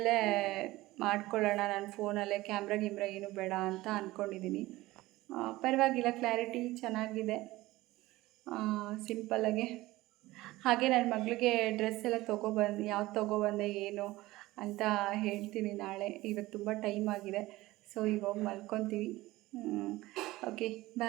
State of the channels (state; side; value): quieter; left; 18.4 dB